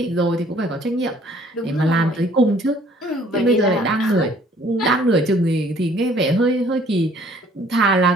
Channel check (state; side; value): normal; both; correlation 0.58